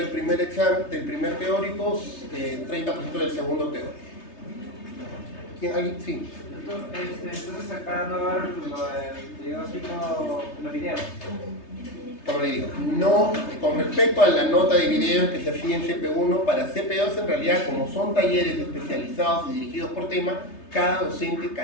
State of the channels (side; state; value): right; late; 3.3 ms